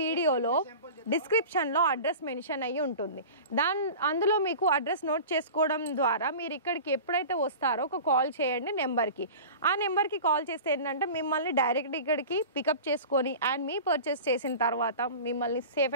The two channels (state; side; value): inverted; both; correlation -0.36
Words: డిస్క్రిప్షన్లో అడ్రస్ మెన్షన్ అయ్యి ఉంటుంది. అందులో మీకు అడ్రస్ నోట్ చేసుకోవడం ద్వారా మీరు ఇక్కడికి ఎప్పుడైతే వస్తారో ఒక కాల్ చేయండి నెంబర్కి. ఆ నెంబర్కి కాల్ చేస్తే ఏంటంటే మిమ్మల్ని డైరెక్ట్ ఇక్కడికి పికప్ చేసుకొని అండ్ మీ పర్చేస్ చేసిన తర్వాత మిమ్మల్ని